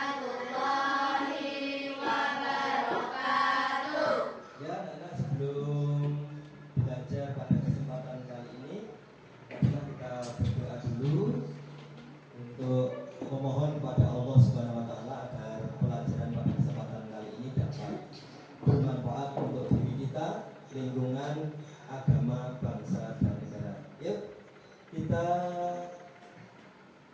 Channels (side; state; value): both; identical; correlation 1.00